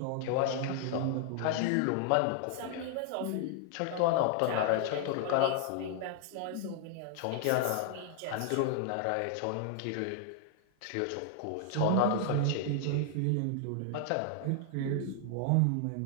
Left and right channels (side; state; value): both; different; correlation 0.00